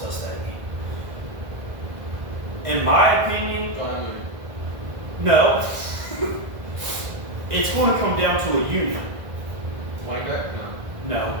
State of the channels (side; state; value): left; late; 1.5 ms